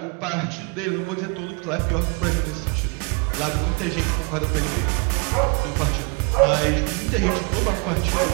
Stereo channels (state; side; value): quieter; left; 32.4 dB